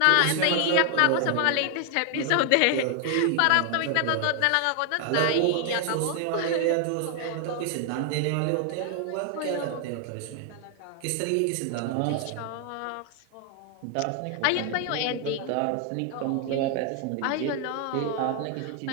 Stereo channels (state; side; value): different; both; correlation 0.00